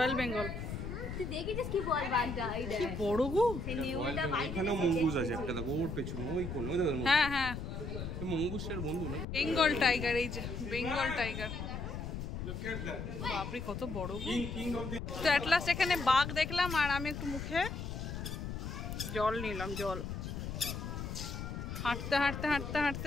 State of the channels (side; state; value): left; noise; rumble, 5 dB below the sound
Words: বেঙ্গল। তুই দেখেছিস কি বল বাঘটা এইটা কি বড় গো। এখানেও মঙ্গুস আছে একটা, দেখো ওর পেছনে ওই কোন, ওই দেখো হ্যাঁ হ্যাঁ মঙ্গুসের বন্ধু না, বেঙ্গল টাইগার। এই যে বেঙ্গল টাইগার, বাপরে কত বড় গো। তো অ্যাট লাস্ট এখানে বাঘ দেখলাম আর আমি একটু মুখে জল নিলাম, জল। হাঁটতে হাঁটতে হাঁটতে হাঁটতে